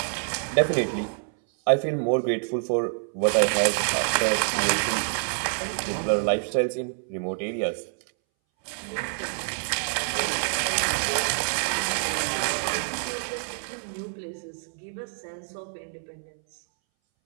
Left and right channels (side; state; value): left; silent; 60 dB below the other